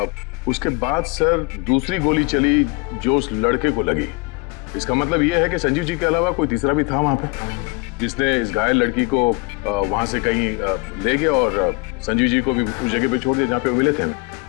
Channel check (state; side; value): quieter; right; 28.2 dB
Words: उसके बाद सर दूसरी गोली चली जो उस लड़के को लगी। इसका मतलब ये है कि संजीव जी के अलावा कोई तीसरा भी था वहां पे, जिसने इस घायल लड़की को वहां से कहीं ले गया और संजीव जी को भी उस जगह पे छोड़ दिया जहाँ पे वो मिले थे।